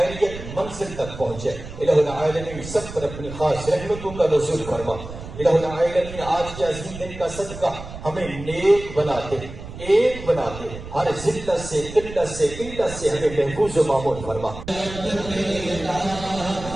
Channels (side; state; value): right; noise; rumble, 12 dB below the sound